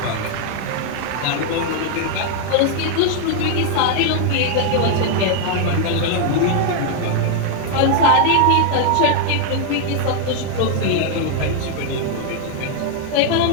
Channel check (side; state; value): both; different; correlation 0.00